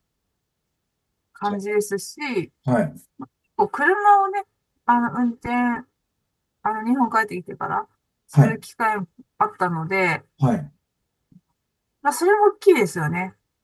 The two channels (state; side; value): identical; both; correlation 1.00